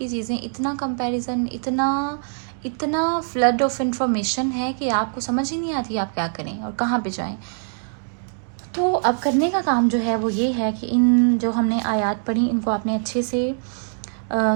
चीज़ें, इतना कंपैरिजन, इतना फ्लड ऑफ इंफॉर्मेशन है कि आपको समझ ही नहीं आती आप क्या करें और कहाँ पे जाएं। तो अब करने का काम जो है वो ये है कि इन जो हमने आयात पढ़ी इनको आपने अच्छे से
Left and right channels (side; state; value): left; silent; digital silence